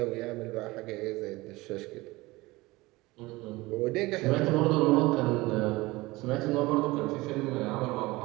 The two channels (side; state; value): left; quieter; 20.9 dB